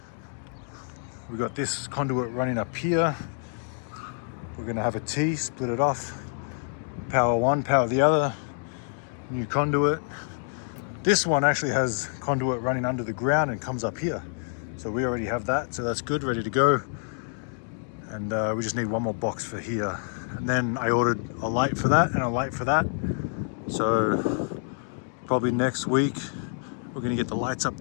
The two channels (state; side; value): silent; right; digital silence